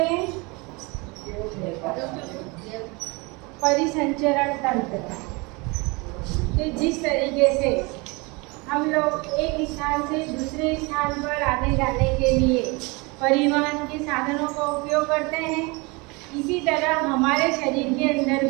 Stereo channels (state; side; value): quieter; left; 27.2 dB